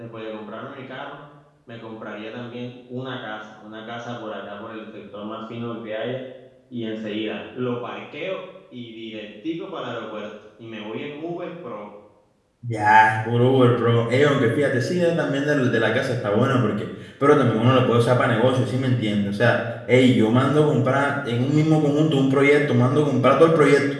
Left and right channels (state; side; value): identical; both; correlation 1.00